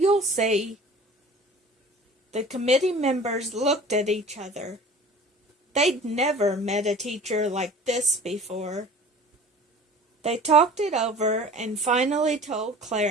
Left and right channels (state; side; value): normal; both; correlation 0.43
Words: see. The committee members looked at each other. They'd never met a teacher like this before. They talked it over and finally told